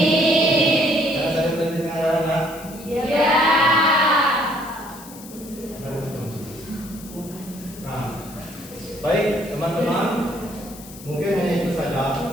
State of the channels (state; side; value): noise; left; hiss, 17 dB below the sound